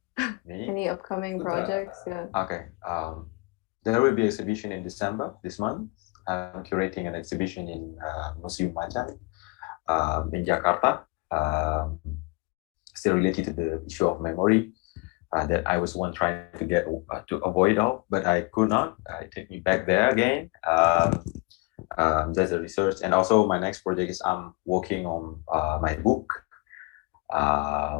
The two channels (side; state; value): right; quieter; 26.8 dB